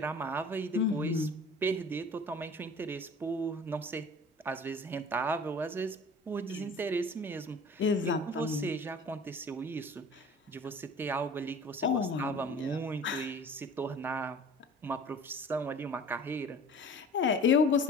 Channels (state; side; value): normal; both; correlation 0.43